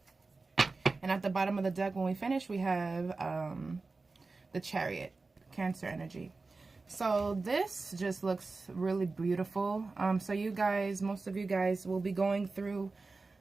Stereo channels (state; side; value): quieter; left; 3.8 dB